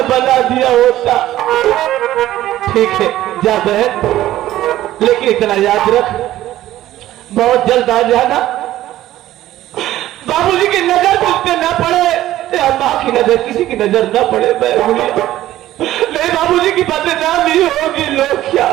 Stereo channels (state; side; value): quieter; left; 14.2 dB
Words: बना दिया होता। ठीक है जा बहन, लेकिन इतना याद रख, बहुत जल्द आ जाना। बाबूजी की नजर तुझ पे न पड़े या माँ की नजर, किसी की नजर न पड़े। नहीं बाबूजी की बदनामी होगी, लोग क्या